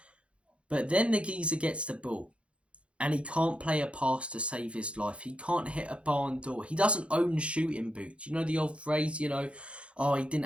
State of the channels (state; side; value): late; left; 0.060 ms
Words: But then the geezer gets the ball and he can't play a pass to save his life. He can't hit a barn door. He doesn't own shooting boots. You know the old phrase, oh, he didn't